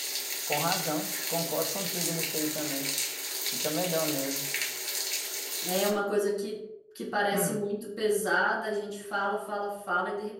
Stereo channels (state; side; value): identical; both; correlation 1.00